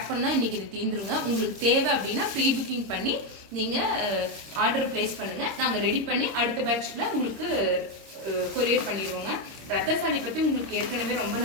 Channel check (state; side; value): late; left; 26 ms